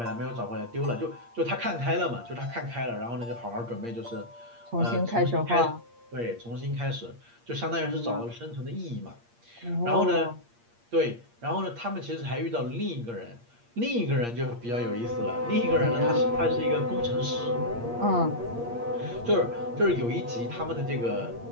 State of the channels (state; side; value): late; left; 8.6 ms